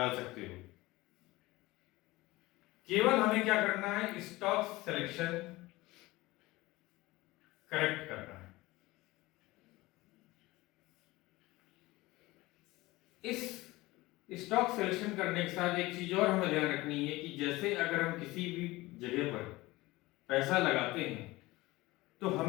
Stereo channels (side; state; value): right; quieter; 20.0 dB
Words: सकते हो। केवल हमें क्या करना है, स्टॉक सिलेक्शन करेक्ट करना है। इस स्टॉक सिलेक्शन करने के साथ एक चीज और हमें ध्यान रखनी है कि जैसे अगर हम किसी भी जगह पर पैसा लगाते हैं तो